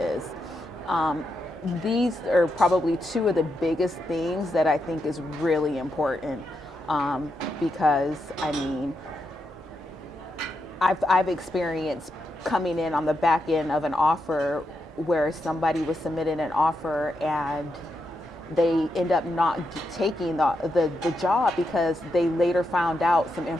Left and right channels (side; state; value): both; normal; correlation 0.84